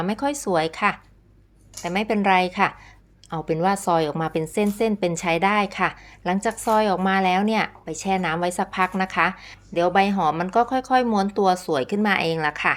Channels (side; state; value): both; identical; correlation 1.00